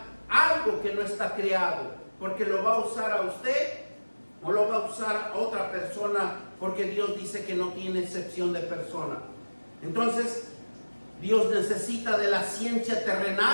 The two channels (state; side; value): inverted; both; correlation -1.00